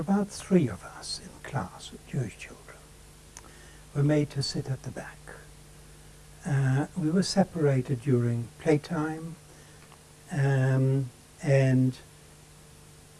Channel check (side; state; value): both; identical; correlation 1.00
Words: 3 of us in class, Jewish children, were made to sit at the back. We were separated during playtime, and